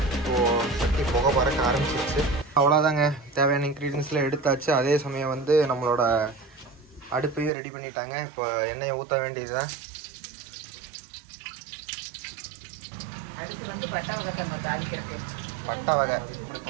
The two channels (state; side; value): drops out; left; at 7.5 s